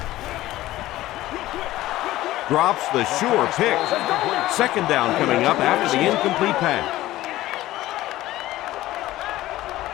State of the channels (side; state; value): right; quieter; 15.9 dB